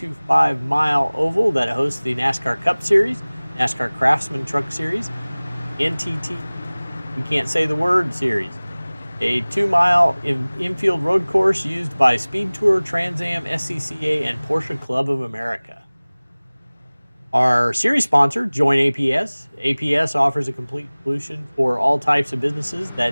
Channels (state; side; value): inverted; both; correlation -1.00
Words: oval that hosts the NASCAR Cup Series, NASCAR Craftsman Truck Series, NTT, we can't say the word, series. A 2-mile infield road course used by Speed Tour, Trans Am, SCCA, and Porsche Club of America. Our series sponsor, Join APS. APS offers a complete solution for all types of businesses